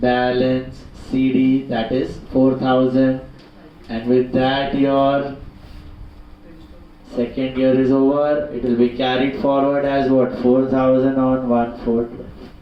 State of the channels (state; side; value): identical; both; correlation 1.00